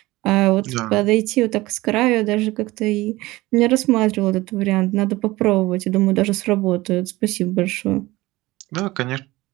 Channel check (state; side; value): quieter; left; 19.4 dB